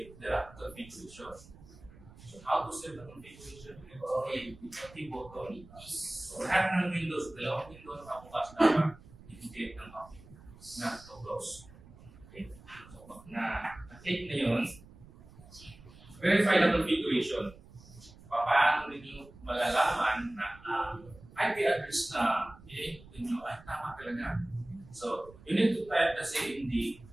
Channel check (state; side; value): noise; right; rumble, 21 dB below the sound